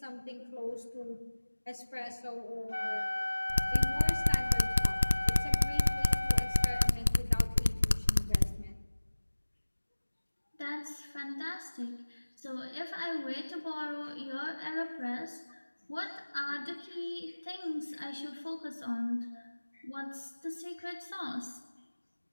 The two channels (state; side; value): inverted; both; correlation -1.00